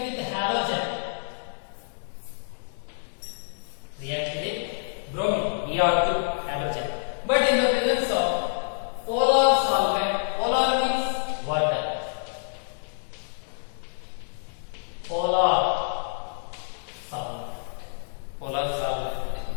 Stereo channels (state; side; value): silent; right; digital silence